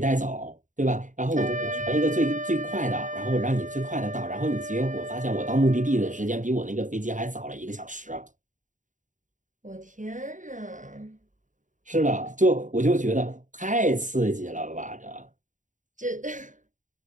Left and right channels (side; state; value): left; late; 0.37 ms